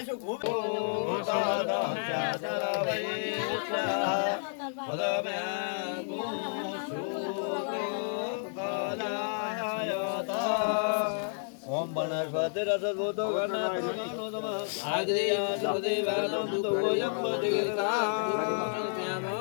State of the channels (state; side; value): silent; right; digital silence